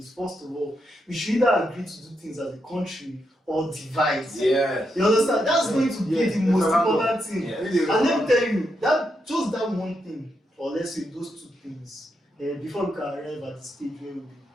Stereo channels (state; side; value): normal; both; correlation 0.82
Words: first of all, we should either agree to do things as a country or divide. Yeah. You understand? That's going to be Yeah, the most it's a important thing. Yeah. And let me tell you, that just that one thing, or let's say those two things, before we can arrive at the stage where we'll be